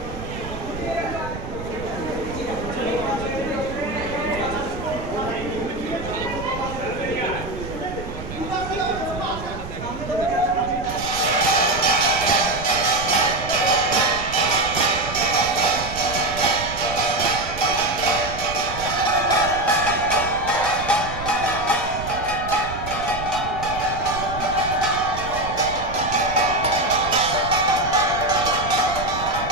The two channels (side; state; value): right; noise; rumble, 10 dB below the sound